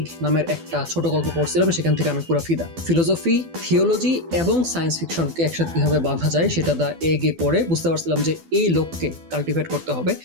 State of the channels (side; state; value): left; late; 12 ms